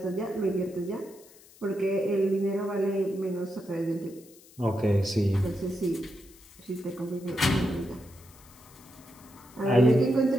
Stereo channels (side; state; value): left; noise; hiss, 24 dB below the sound